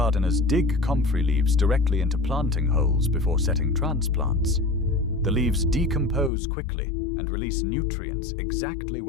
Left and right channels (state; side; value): drops out; right; at 6.3 s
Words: dig Comfrey leaves directly into planting holes before setting transplants. The leaves decompose quickly and release nutrients exactly